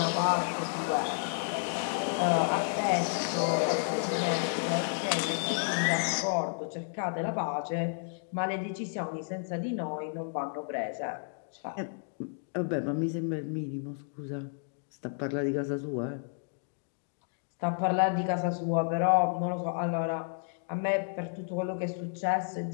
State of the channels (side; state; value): right; silent; digital silence